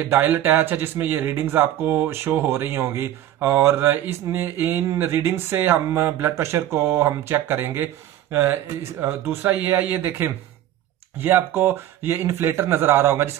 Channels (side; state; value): left; quieter; 12.4 dB